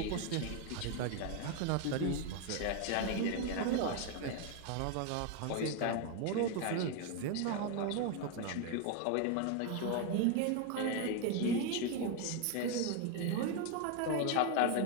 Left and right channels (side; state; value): both; different; correlation 0.01